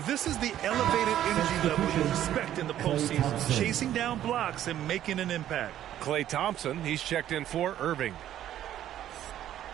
this is the elevated energy level you expect in the postseason. Chasing down blocks and making an impact. Klay Thompson, he's checked in for Irving.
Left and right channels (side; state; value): left; quieter; 11.8 dB